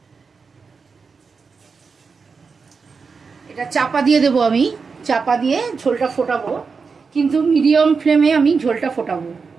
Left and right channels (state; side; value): quieter; left; 5.1 dB